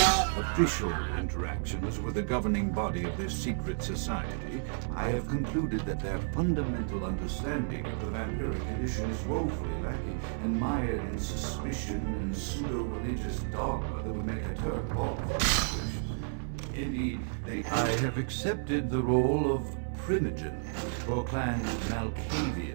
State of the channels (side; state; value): left; silent; 57 dB below the other